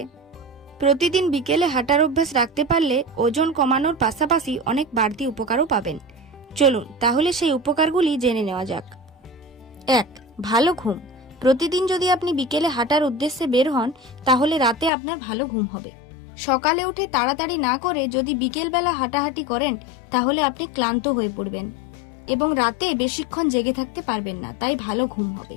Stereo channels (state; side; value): drops out; right; at 14.9 s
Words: রাখতে পারলে ওজন কমানোর পাশাপাশি অনেক বাড়তি উপকারও পাবেন। চলুন তাহলে সেই উপকারগুলি জেনে নেওয়া যাক। 1. ভালো ঘুম। প্রতিদিন যদি আপনি বিকেলে হাঁটার উদ্দেশ্যে বের হন, তাহলে রাতে আপনার ভালো ঘুম হবে। সকালে উঠে তাড়াতাড়ি না করে যদি বিকেলবেলা হাঁটাহাঁটি করেন, তাহলে আপনি ক্লান্ত হয়ে পড়বেন এবং রাতে বেশিক্ষণ জেগে থাকতে পারবেন না, তাই ভালো ঘুম হবে।